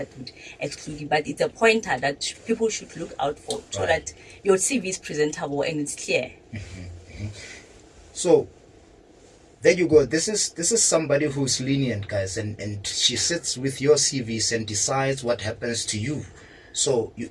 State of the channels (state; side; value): identical; both; correlation 1.00